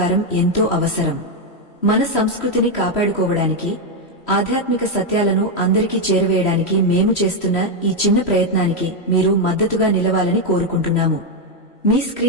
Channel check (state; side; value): late; right; 3.0 ms